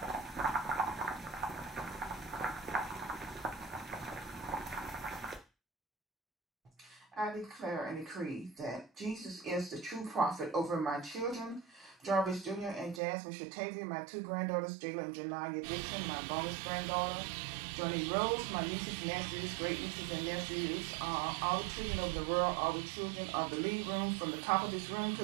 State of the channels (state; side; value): drops out; left; at 13.0 s